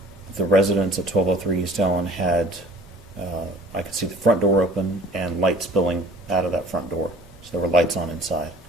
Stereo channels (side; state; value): both; normal; correlation 0.48